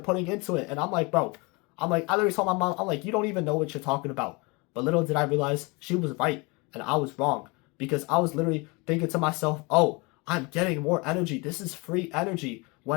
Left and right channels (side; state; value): right; quieter; 27.2 dB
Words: into it. And I'm like, bro, I literally told my mom, I'm like, you don't even know what you're talking about. But little did I realize she was right and I was wrong. Because I was literally thinking to myself, oh, I'm getting more energy. This is free energy.